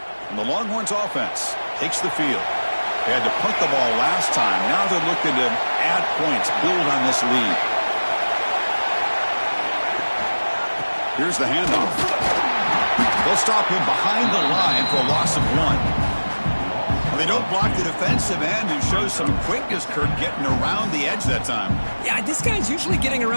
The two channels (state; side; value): inverted; both; correlation -1.00